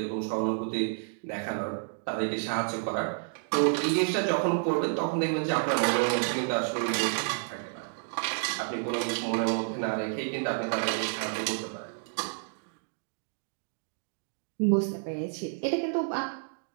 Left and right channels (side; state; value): left; silent; digital silence